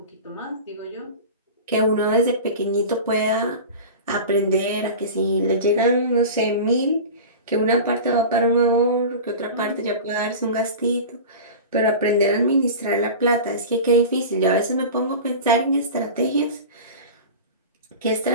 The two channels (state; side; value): inverted; both; correlation -0.32